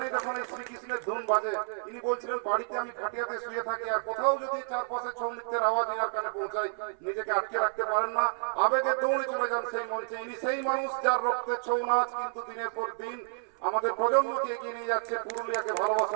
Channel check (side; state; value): left; silent; 57 dB below the other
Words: যখন এই শ্রীকৃষ্ণের ধুন বাজে ইনি বলছিলেন বাড়িতে আমি খাটিয়াতে শুয়ে থাকি আর কোথাও যদি চারপাশে ছৌ নৃত্যের আওয়াজ ইনার কানে পৌঁছায় নিজেকে আটকে রাখতে পারেন না, আবেগে দৌড়ে চলে যান সেই মঞ্চে। ইনি সেই মানুষ যার রক্তে ছৌ নাচ কিন্তু দিনের পর দিন আমাদের প্রজন্মকে এগিয়ে নিয়ে যাচ্ছে, পুরুলিয়াকে